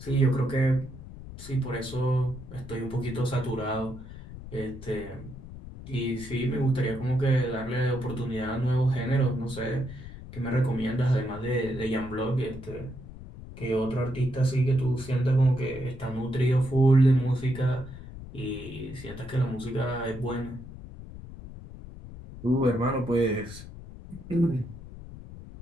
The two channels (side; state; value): left; noise; rumble, 14 dB below the sound